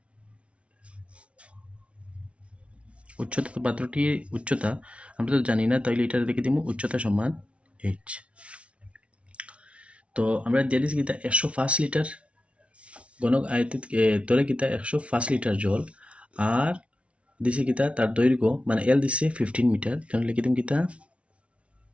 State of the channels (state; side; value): late; left; 0.061 ms